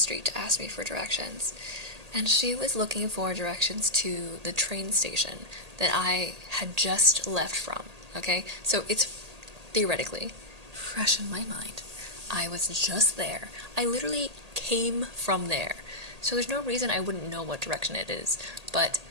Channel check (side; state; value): left; late; 1.8 ms